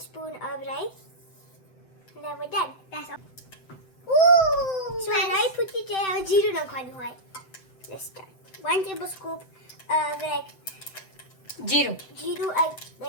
of rice. And then we're done. That's all. Ooh! So I put it there. Zero નાખવાનું હોય. Let's start. 1 tablespoon of જીરું add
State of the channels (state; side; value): late; right; 7.8 ms